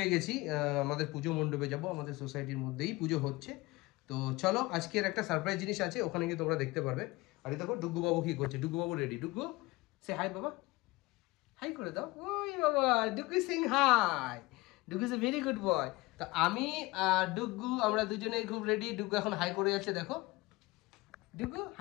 গেছি, আমাদের পুজো মণ্ডপে যাব, আমাদের সোসাইটির মধ্যেই পুজো হচ্ছে। তো চলো, আজকের একটা সারপ্রাইজ জিনিস আছে, ওখানে গিয়ে তোমরা দেখতে পারবে। আর দেখো ডুগু বাবু কি করছে। ডুগু বাবু রেডি। ডুগু সে হাই বাবা, হাই করে দাও। ওই বাবা, ডুগু সিং hi. Dugu is a very good boy. তো আমি আর ডুগু আমরা দুজনেই খুব রেডি। ডুগু এখন হাই করে যাচ্ছে, দেখো। ডুগু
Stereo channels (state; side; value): quieter; right; 21.7 dB